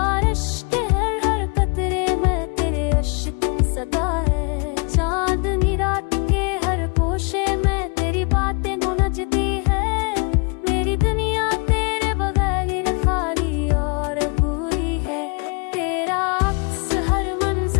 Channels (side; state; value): right; quieter; 34.4 dB